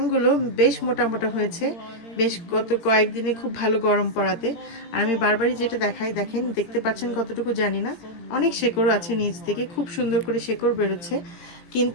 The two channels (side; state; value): right; late; 18 ms